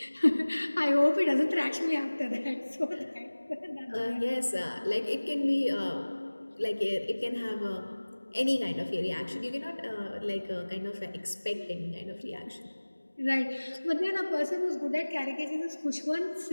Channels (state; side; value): inverted; both; correlation -1.00